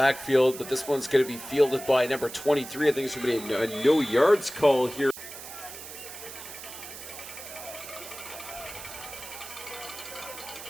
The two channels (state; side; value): noise; right; hiss, 12 dB below the sound